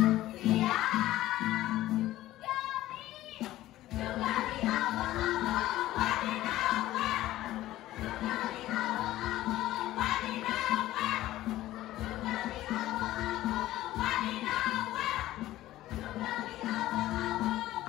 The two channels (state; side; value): quieter; right; 15.2 dB